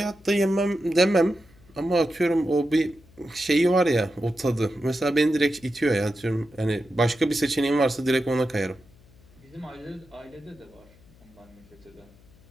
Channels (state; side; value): noise; left; hum, 27 dB below the sound